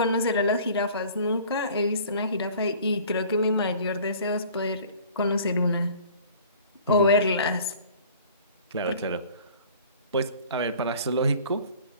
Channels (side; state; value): both; inverted; correlation -0.48